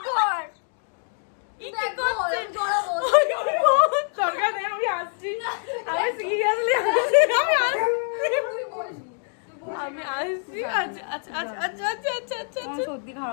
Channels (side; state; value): right; silent; 62 dB below the other